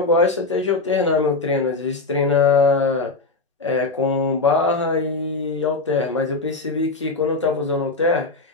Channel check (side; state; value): right; quieter; 3.6 dB